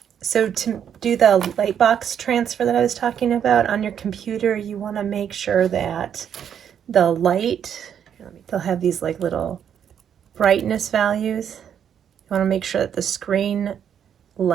so to do the light box transfer that I was talking about on your computer, you want to make sure that the light, they'll have these like little brightness values. You want to make sure that the screen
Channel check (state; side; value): quieter; left; 8.7 dB